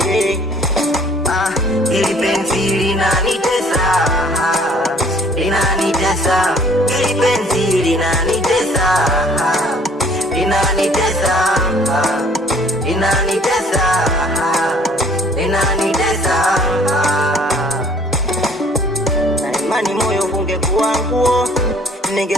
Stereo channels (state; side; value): normal; both; correlation 0.57